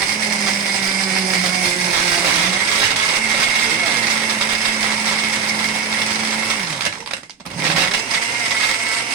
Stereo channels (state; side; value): quieter; left; 6.1 dB